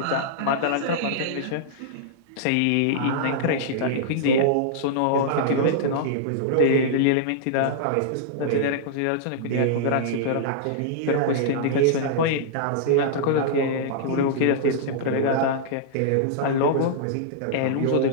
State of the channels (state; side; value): different; both; correlation -0.02